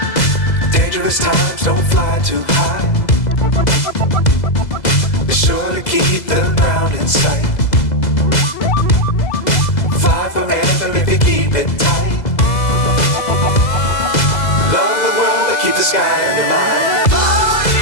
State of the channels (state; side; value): late; right; 2.0 ms